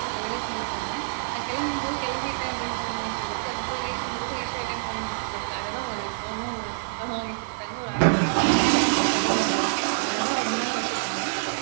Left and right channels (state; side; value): silent; left; 59 dB below the other